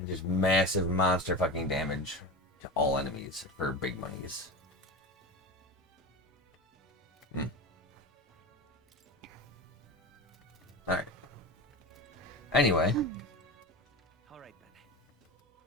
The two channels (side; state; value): both; normal; correlation 0.26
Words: just massive monster fucking damage to all enemies for big monies. Alright. Anyway. Alright then.